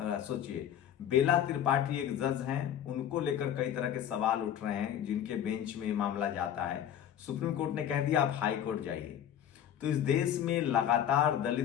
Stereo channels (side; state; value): right; quieter; 10.1 dB